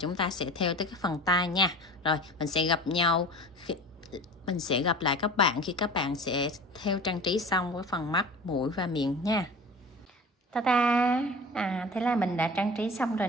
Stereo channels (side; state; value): both; normal; correlation 0.38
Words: ta sẽ thêu tới cái phần tai nha. Rồi mình sẽ gặp nhau mình sẽ gặp lại các bạn khi các bạn sẽ thêu trang trí xong với phần mắt, mũi và miệng nha. Ta-da! Thế là mình đã trang trí xong rồi